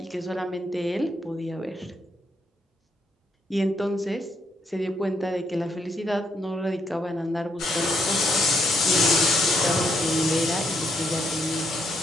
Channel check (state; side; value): normal; both; correlation 0.75